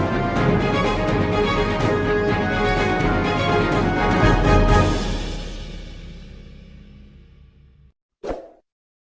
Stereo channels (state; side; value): identical; both; correlation 1.00